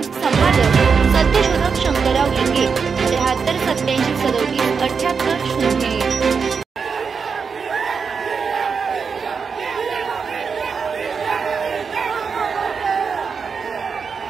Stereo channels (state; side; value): quieter; left; 5.7 dB